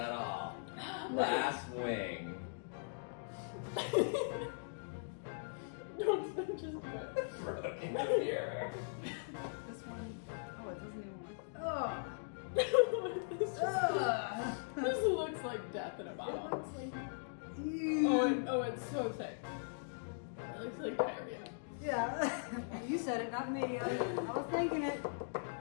all. Last wing. Don't just do it. Broke into the mirror. This one. Oh, it doesn't even work. Oh. This looks like death in a bottle. Oh, it's so thick. It looks like diarrhea. Yeah. You said it, not me. I was thinking it.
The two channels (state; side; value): silent; right; digital silence